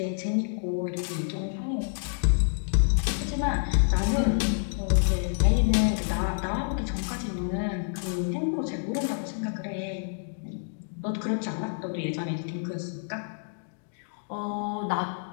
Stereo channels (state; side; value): silent; right; digital silence